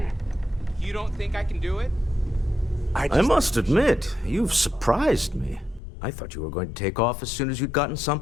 You don't think I can do it? I must admit, you've surprised me. I thought you were going to take off as soon as you'd gotten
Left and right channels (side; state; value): right; drops out; at 5.8 s